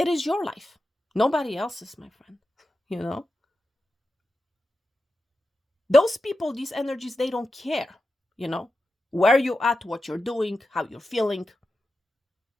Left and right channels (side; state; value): both; normal; correlation 0.91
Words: your life. Nobody else's, my friend. Those people, these energies, they don't care, where you're at, what you're doing, how you're feeling.